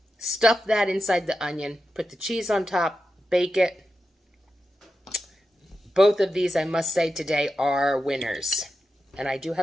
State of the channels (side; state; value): both; normal; correlation 0.90